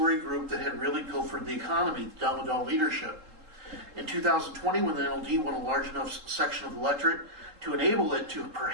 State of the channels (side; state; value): left; late; 3.7 ms